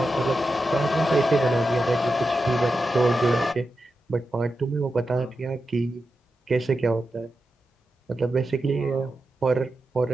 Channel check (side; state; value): both; normal; correlation 0.89